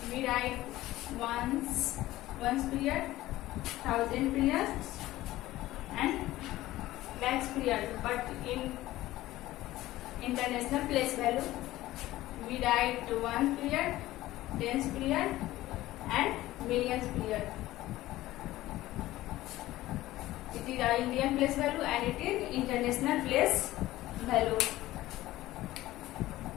we write ones period, thousand periods and lakhs period, but in international place value we write one period, tens period and millions period. It is our Indian place value and it is international place value.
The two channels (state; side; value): quieter; right; 16.3 dB